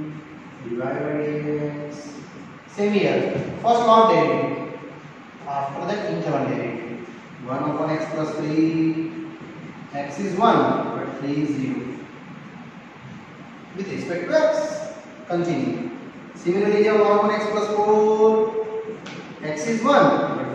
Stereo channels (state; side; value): identical; both; correlation 1.00